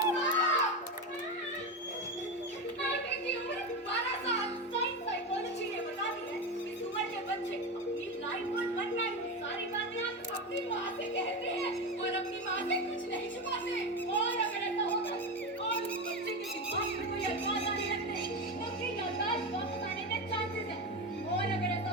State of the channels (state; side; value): normal; both; correlation 0.17